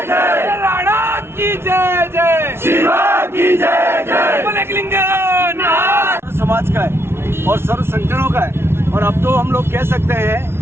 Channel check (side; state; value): left; late; 0.12 ms